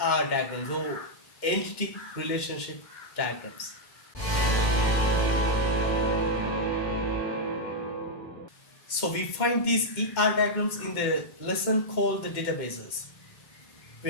diagrams or entity relationship diagrams. So we find these ER diagrams in the lesson called the databases. We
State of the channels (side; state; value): right; late; 2.1 ms